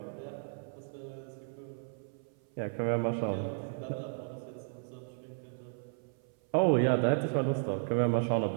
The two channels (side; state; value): left; silent; 55 dB below the other